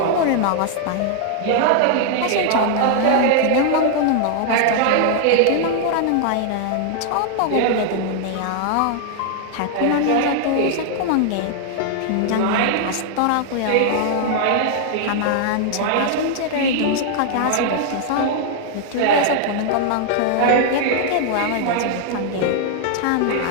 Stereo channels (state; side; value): different; both; correlation 0.00